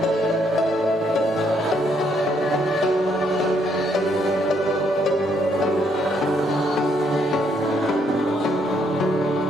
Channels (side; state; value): both; normal; correlation 0.72